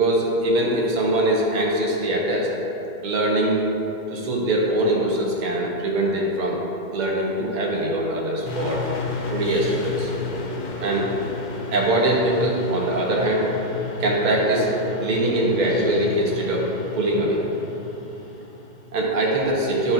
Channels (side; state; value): left; late; 2.1 ms